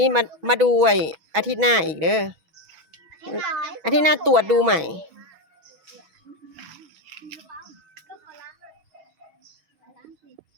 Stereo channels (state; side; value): late; left; 6.1 ms